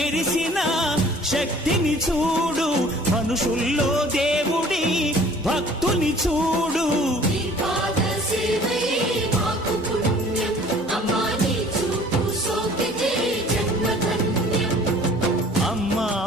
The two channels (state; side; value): normal; both; correlation 0.51